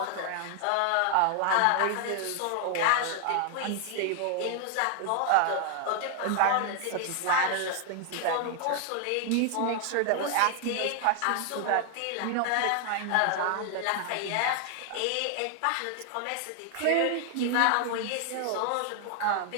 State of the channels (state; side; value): different; both; correlation 0.00